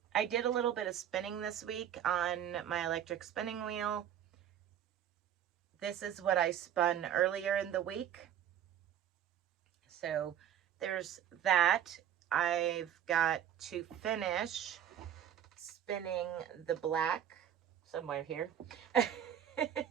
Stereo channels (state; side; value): quieter; left; 10.1 dB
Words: did a little bit of spinning this week on my electric spinning wheel. This is what I spun earlier in the week. So there's that. I've got to finish spinning the black somewhere here.